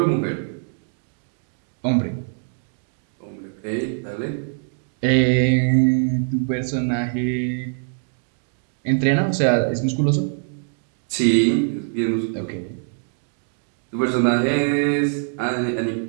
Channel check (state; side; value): silent; left; digital silence